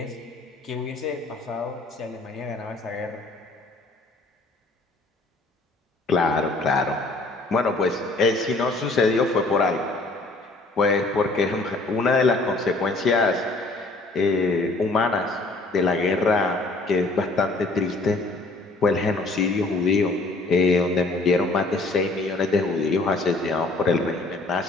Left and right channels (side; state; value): right; quieter; 3.1 dB